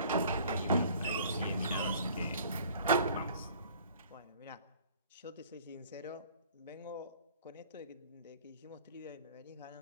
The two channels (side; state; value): both; inverted; correlation -0.52